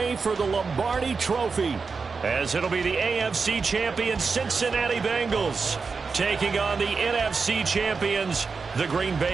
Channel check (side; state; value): left; quieter; 4.8 dB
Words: for the Lombardi Trophy, as it'll be the AFC champion Cincinnati Bengals taking on the NFC champions, the Green